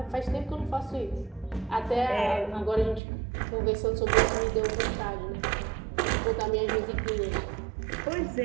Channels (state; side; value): drops out; left; at 3.0 s